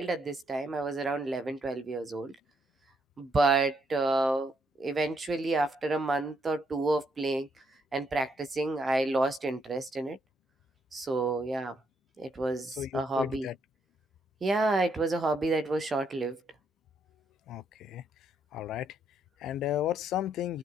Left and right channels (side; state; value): both; normal; correlation 0.74